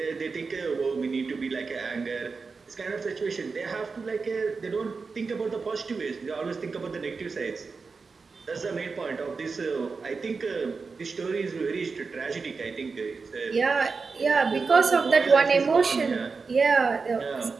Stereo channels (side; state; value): left; quieter; 4.6 dB